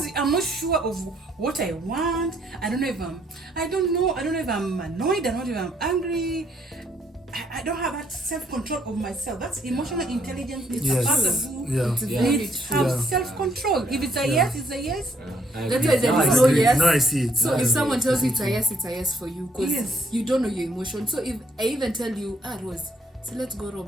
I'm not sure of what I want. I don't know if I'm annoyed. I don't know if I'm angry. I don't have that self-control of myself. That's emotional intelligence. It's Yes. a person who Yeah. It's Yeah. very needs true. have Yeah. self-control. If it's a yes, it's a yes. That's why there I is no agree. yes. Now I see it. So Now I if see someone it. tells you it's a yes for you, because Yes. you don't know your emotion. So if I even tell you, Rose, so let's go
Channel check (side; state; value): both; normal; correlation 0.69